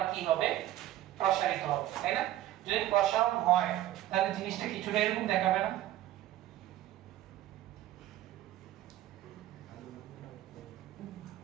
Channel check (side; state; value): left; quieter; 13.9 dB